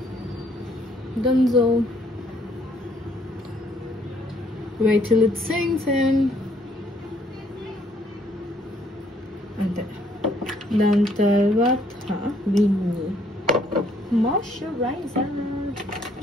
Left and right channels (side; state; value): both; normal; correlation 0.65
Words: Dunzo. Wait till it sinks in. And then tarvata we need moisturizer.